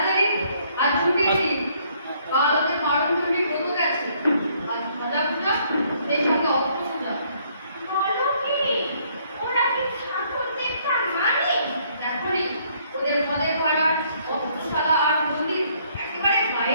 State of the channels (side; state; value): both; inverted; correlation -0.66